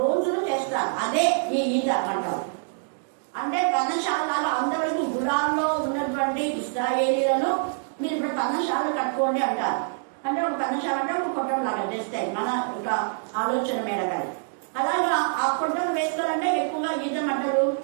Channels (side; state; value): left; silent; digital silence